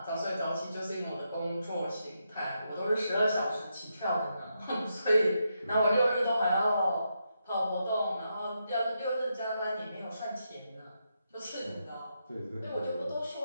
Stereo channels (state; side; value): inverted; both; correlation -0.83